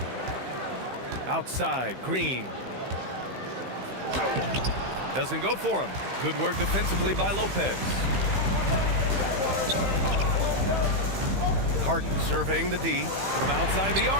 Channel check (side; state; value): left; late; 15 ms